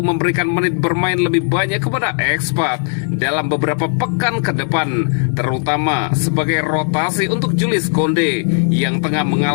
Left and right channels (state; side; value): silent; right; 64 dB below the other